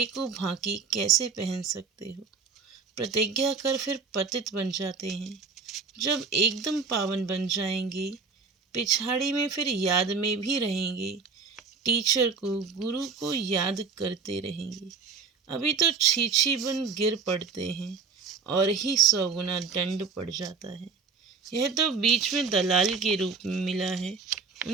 को भांकी कैसे पहन सकते हो? प्रतिज्ञा कर फिर पतित बन जाते हैं। जब एकदम पावन बन जाएंगे पिछाड़ी में फिर याद में भी रहेंगे। टीचर को गुरु को याद करते रहेंगे। अभी तो छीछी बन गिर पड़ते हैं। और ही 100 गुना दंड पड़ जाता है। यह तो बीच में दलाल के रूप में मिला है,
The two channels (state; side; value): quieter; left; 5.1 dB